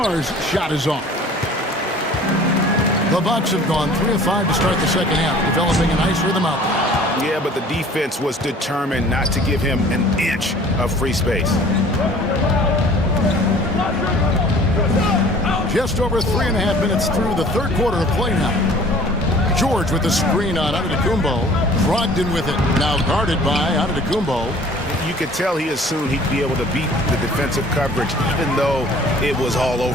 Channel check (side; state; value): both; normal; correlation 0.49